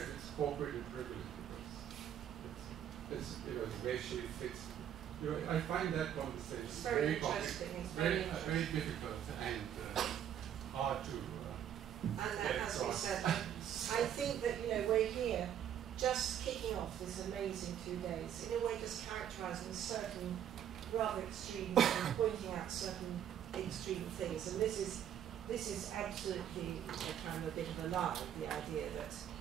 it's corporate and privileged, because it's you know, it's racially fixed. You know, I find that conversation it's very interesting. It's very difficult and hard to. And that, as we said, I think that, you know, we're here just kicking off this amazing 2 days, in a way just characterising certain rather extreme things, pointing out certain extreme things. And this is absolutely kind of a bit of a lie, the idea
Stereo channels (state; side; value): quieter; left; 9.8 dB